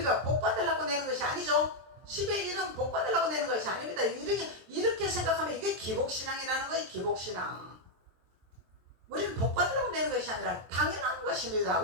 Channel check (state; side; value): late; left; 23 ms